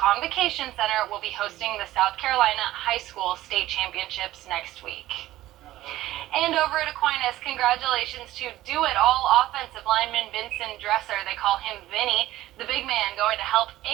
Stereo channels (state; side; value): quieter; left; 15.4 dB